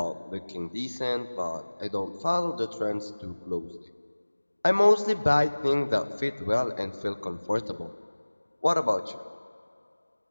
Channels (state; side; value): inverted; both; correlation -1.00